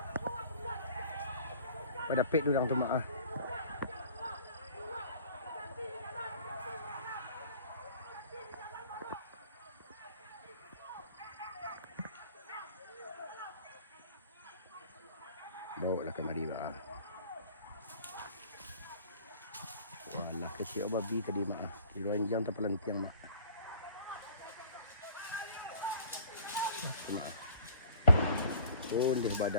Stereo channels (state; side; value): inverted; both; correlation -0.50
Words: Pada pet durang tu mak. Bawa lah kemari mak. Walah kecil babi tadi mak. Kiloan jam terpelantiang mak. Cuma. Oh, dia